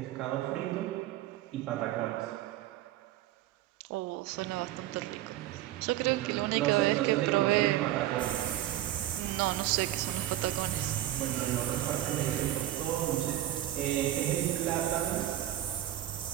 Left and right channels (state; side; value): quieter; left; 13.8 dB